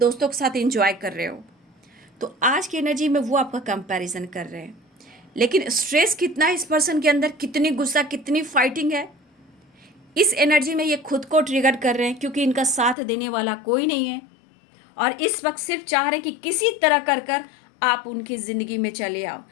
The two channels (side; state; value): right; drops out; at 13.0 s